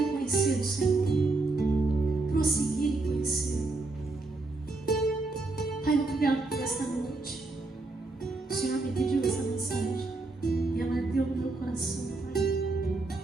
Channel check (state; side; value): quieter; left; 3.3 dB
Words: conhecer o Senhor, prosseguir em conhecer. Pai, obrigado por esta noite. O Senhor me pediu essa mensagem e ela ardeu no meu coração, Pai.